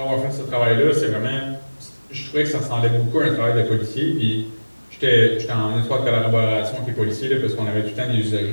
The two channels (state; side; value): inverted; both; correlation -1.00